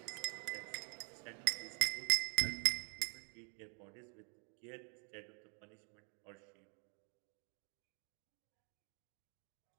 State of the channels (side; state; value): left; quieter; 38.5 dB